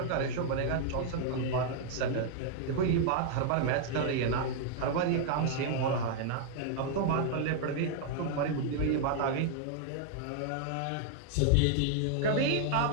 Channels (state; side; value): different; both; correlation 0.00